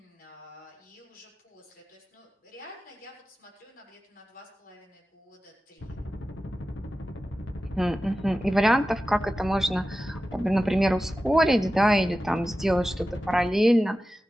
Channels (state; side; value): normal; both; correlation 0.94